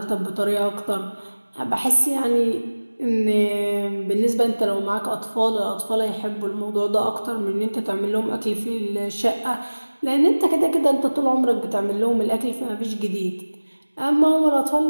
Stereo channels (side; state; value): both; inverted; correlation -1.00